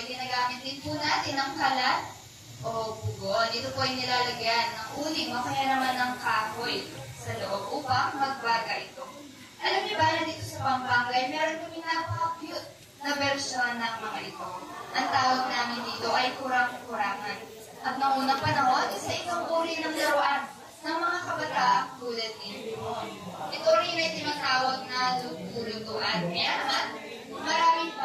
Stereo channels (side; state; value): both; identical; correlation 1.00